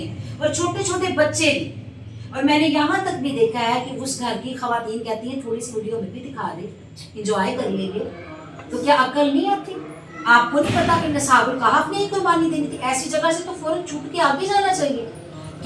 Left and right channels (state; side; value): identical; both; correlation 1.00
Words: और छोटे छोटे बच्चे भी। और मैंने यहाँ तक भी देखा है कि उस घर की खवातीन कहती हैं थोड़ी सी वीडियो में भी दिखा दे, इंजॉय कर लेंगे। तो क्या अकल नहीं आती? आपको नहीं पता कि नसाबुल कहफ ने ही कुर्बानी देनी थी? ऐसी जगह से तो फौरन छूट के आगे जाना चाहिए।